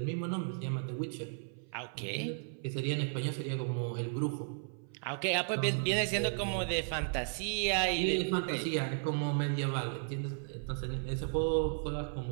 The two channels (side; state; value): left; silent; 55 dB below the other